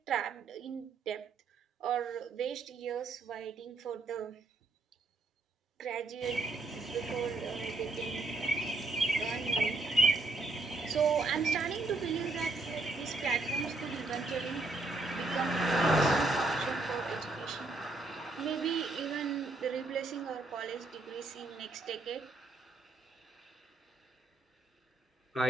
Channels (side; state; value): left; quieter; 3.2 dB